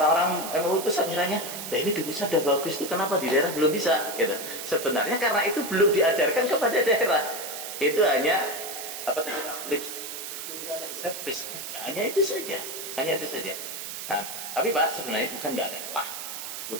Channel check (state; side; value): noise; right; hiss, 7 dB below the sound